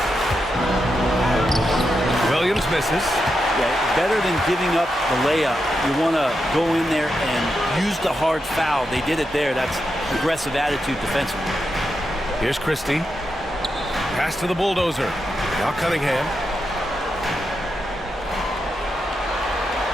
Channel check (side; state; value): both; normal; correlation 0.86